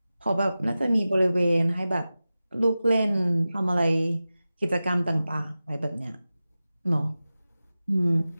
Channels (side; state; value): both; inverted; correlation -0.95